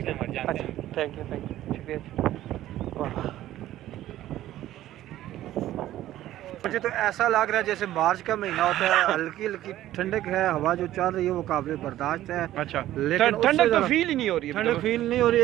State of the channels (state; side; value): quieter; left; 13.8 dB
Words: हैं, मर जानते हैं। अच्छा थैंक यू शुक्रिया। वाह, मुझे तो ऐसा लग रहा है जैसे मार्च का महीना होता है, हल्की हल्की ठंडक है, हवा जो चल रही है वो काबिल बर्दाश्त है। अच्छा, लेकिन उससे ठंडक तो ज़रा- फील ही नहीं हो रही है। ठंडक फील नहीं हो रही।